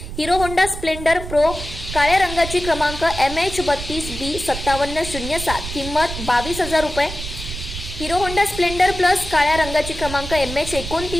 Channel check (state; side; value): noise; right; rumble, 9 dB below the sound